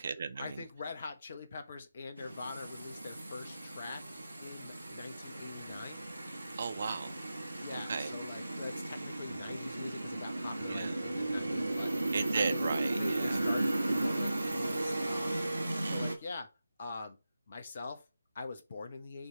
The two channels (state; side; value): inverted; both; correlation -0.92